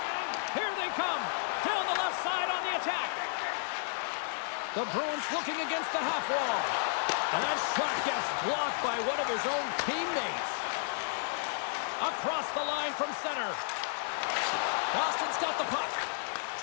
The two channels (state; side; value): silent; right; digital silence